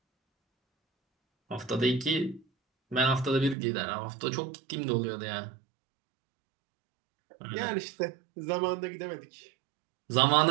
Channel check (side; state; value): left; drops out; at 3.6 s